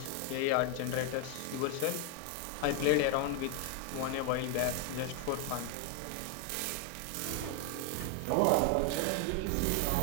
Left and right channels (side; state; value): both; different; correlation 0.00